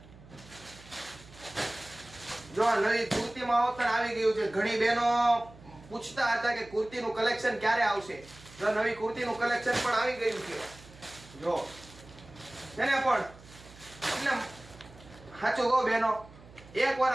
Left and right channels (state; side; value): noise; right; hum, 21 dB below the sound